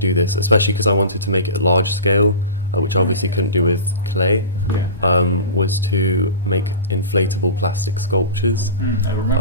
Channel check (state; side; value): inverted; both; correlation -0.31